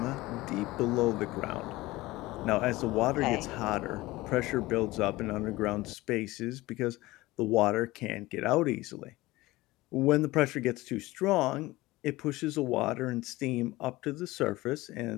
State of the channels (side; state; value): right; quieter; 19.4 dB